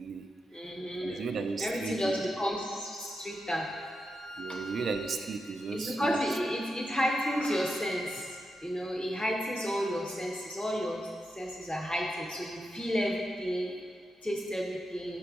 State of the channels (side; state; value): both; normal; correlation 0.87